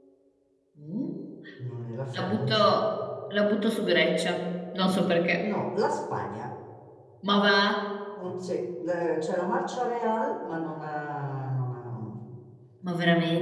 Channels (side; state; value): both; identical; correlation 1.00